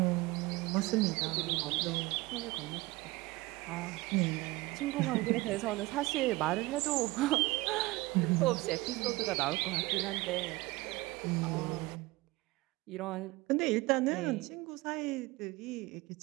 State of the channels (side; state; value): left; quieter; 21.1 dB